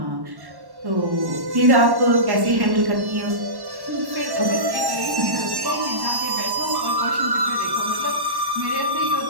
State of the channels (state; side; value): late; left; 1.1 ms